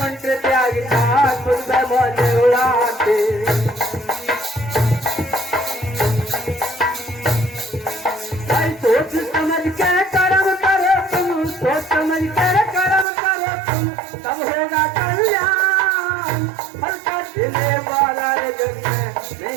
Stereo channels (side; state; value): left; drops out; at 13.1 s